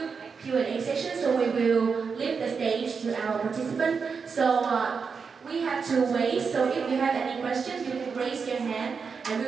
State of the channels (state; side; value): quieter; left; 5.6 dB